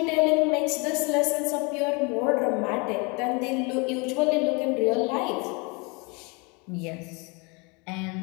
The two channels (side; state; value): right; quieter; 29.9 dB